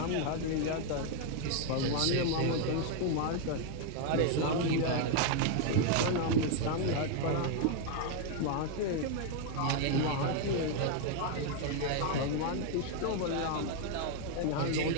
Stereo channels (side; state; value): both; different; correlation 0.00